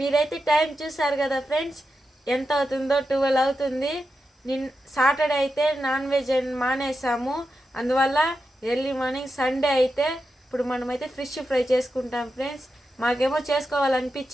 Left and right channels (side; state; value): both; normal; correlation 0.89